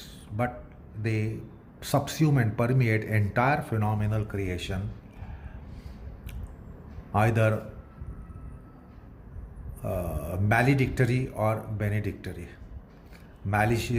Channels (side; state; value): both; identical; correlation 1.00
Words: but they subsume and permeate entire phenomenal creation, either maledictory or benedictory,